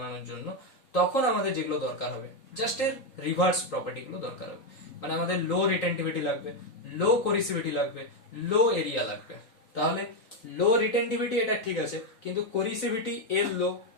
জন্য তখন আমাদের যেগুলো দরকার হবে জাস্ট এর রিভার্স প্রপার্টি গুলো দরকার হবে। মানে আমাদের লো রিটেন্টিভিটি লাগবে, লো কোরিসিভিটি লাগবে, লো এরিয়া লাগবে। তাহলে লো রিটেন্টিভিটি এটা ঠিক আছে, কিন্তু কোরিসিভিটি এর লো,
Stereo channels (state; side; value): late; right; 3.9 ms